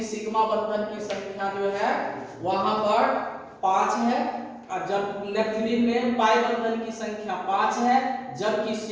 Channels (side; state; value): both; identical; correlation 1.00